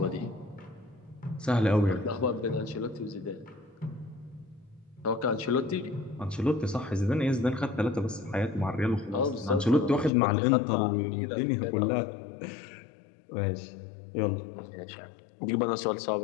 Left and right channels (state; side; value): drops out; right; at 10.1 s